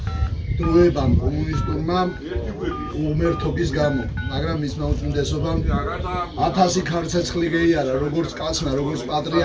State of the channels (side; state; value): both; identical; correlation 1.00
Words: დროებამ კომუნისტურმა უმერთობის გამო, მაგრამ მისმა უწმინდესობამ 1000 ქარცეცხლი ღეიარა, როგორც კაცმა, როგორც